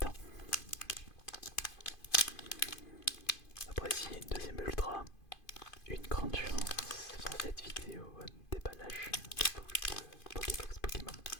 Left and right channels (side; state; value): right; late; 2.5 ms